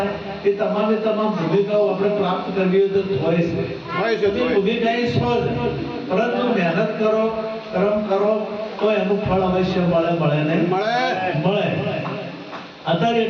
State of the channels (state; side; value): identical; both; correlation 1.00